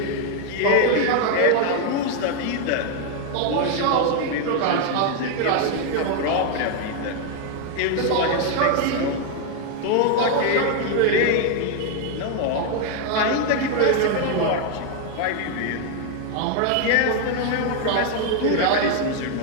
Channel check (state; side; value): different; both; correlation 0.01